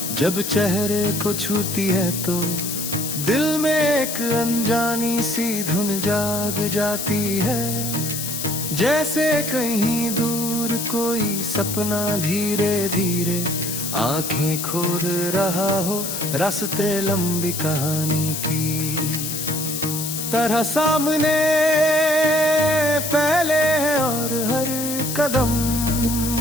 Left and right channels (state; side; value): noise; left; hiss, 4 dB below the sound